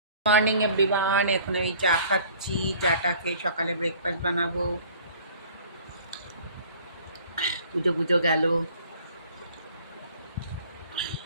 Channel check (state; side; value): inverted; both; correlation -0.51